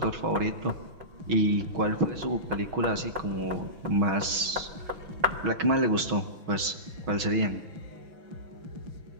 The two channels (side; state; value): left; late; 6.2 ms